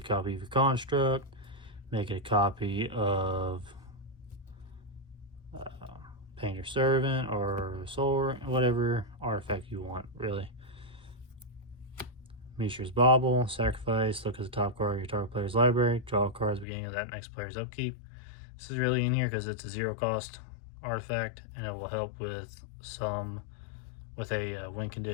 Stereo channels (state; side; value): drops out; right; at 16.7 s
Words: copy of your construct, make it a copy of Painter Servant or Soul, whatever artifact you want, really. Mishra's Bauble, sacrifice, look at the top card of your target player's library, draw a card at the beginning of that next player's upkeep. This is really in here because it's a 0 cost artifact and it will help with a win